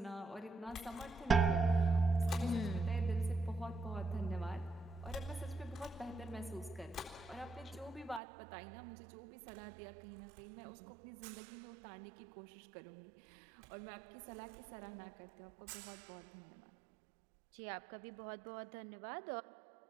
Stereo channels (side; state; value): left; drops out; at 8.2 s